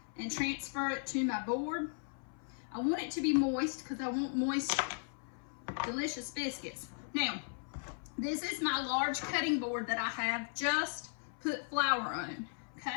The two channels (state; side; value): silent; right; 53 dB below the other